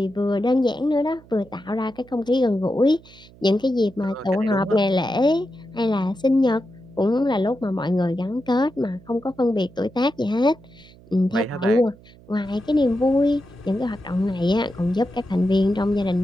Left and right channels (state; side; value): noise; right; hum, 24 dB below the sound